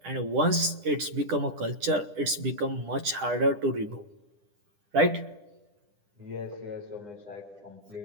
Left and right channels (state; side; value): late; left; 10 ms